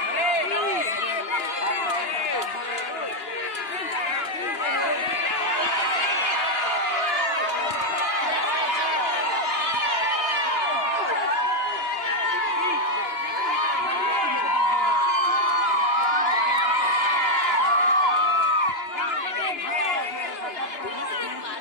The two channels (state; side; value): late; right; 2.9 ms